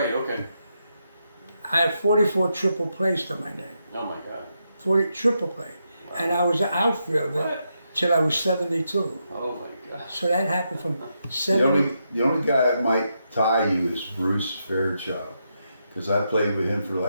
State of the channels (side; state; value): both; inverted; correlation -0.83